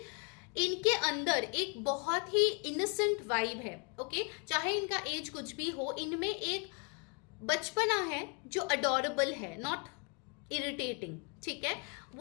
इनके अंदर एक बहुत ही इनोसेंट वाइब है, ओके। चाहे इनका एज कुछ भी हो, इनमें एक बचपना है जो अडोरेबल है, नॉट इरिटेटिंग, ठीक है।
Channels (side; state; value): right; quieter; 34.8 dB